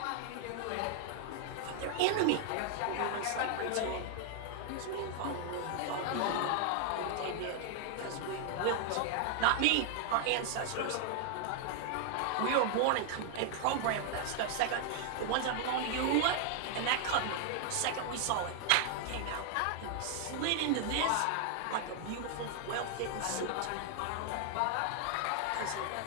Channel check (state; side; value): different; both; correlation 0.00